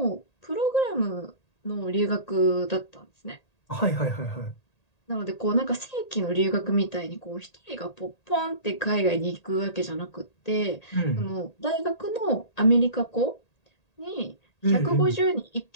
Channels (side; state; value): right; late; 1.8 ms